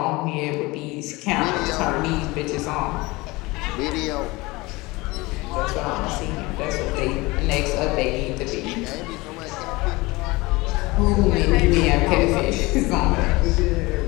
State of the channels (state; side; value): quieter; right; 22.5 dB